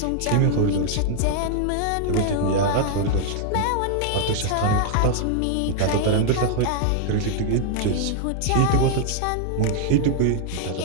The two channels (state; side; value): different; both; correlation 0.00